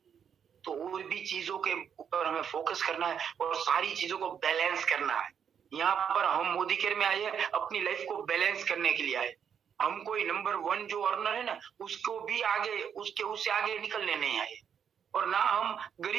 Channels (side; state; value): left; quieter; 7.8 dB